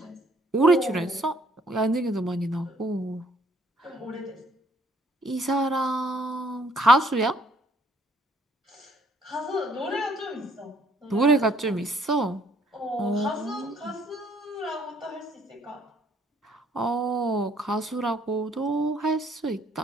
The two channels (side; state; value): both; normal; correlation 0.64